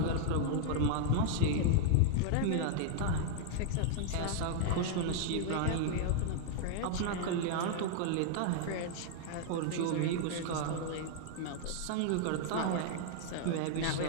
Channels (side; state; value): both; different; correlation 0.00